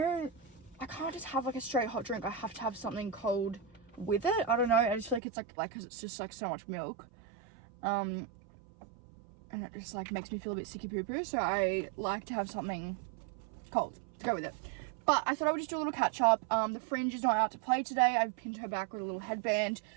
can't just have like a straight hot drink. I have to have something cold with it. I don't know, I just feel like it's like cause it's just like so much milk. And it just like makes me feel a bit sicky poo poo, so I like to have something cold to go with it. But I thought I would just do a little catch up. The Fringe is not out to play today. I've pinned her back with a little headband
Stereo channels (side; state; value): left; drops out; at 5.2 s